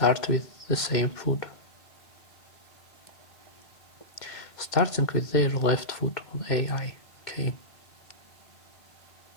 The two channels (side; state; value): right; late; 2.1 ms